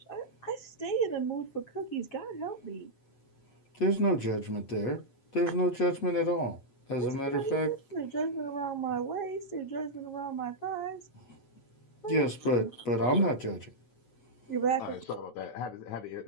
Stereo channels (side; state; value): right; late; 8.1 ms